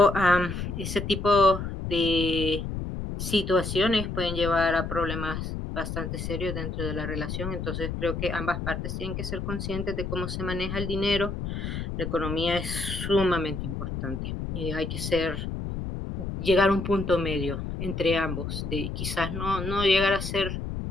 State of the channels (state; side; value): noise; left; rumble, 5 dB below the sound